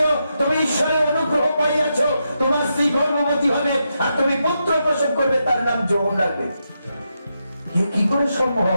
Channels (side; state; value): both; inverted; correlation -0.84